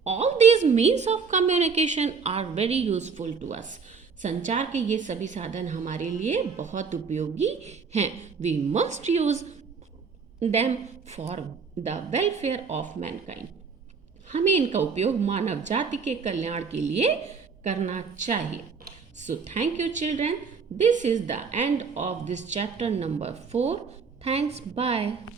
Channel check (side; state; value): left; quieter; 5.5 dB